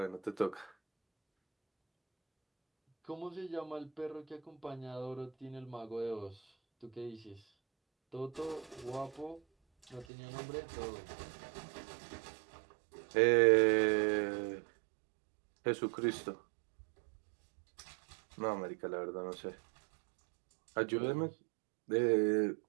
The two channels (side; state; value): left; drops out; at 10.1 s